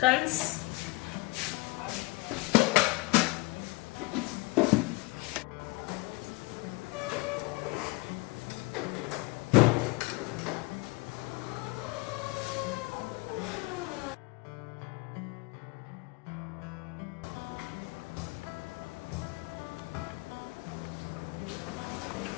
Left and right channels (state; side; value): quieter; right; 24.0 dB